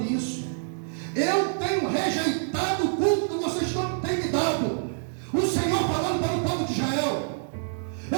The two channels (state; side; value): silent; left; digital silence